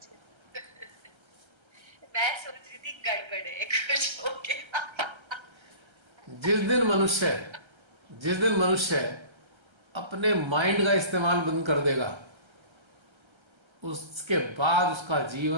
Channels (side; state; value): left; late; 1.3 ms